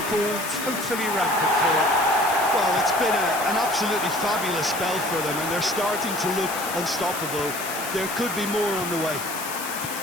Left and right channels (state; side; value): noise; left; hiss, 8 dB below the sound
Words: totally rampant here. Well, it's been an absolutely fabulous spell for them, and they're starting to look unstoppable. There could be more on the way.